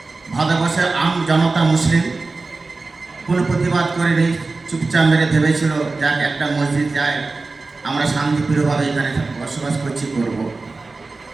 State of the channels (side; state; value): left; quieter; 3.7 dB